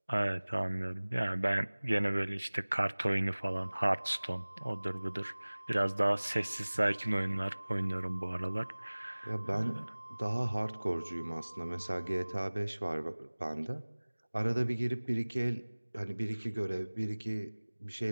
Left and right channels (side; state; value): both; inverted; correlation -1.00